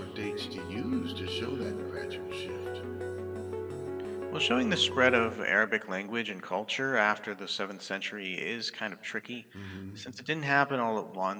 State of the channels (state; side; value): identical; both; correlation 1.00